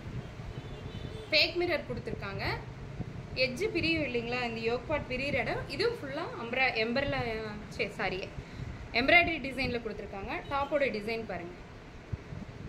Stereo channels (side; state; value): both; identical; correlation 1.00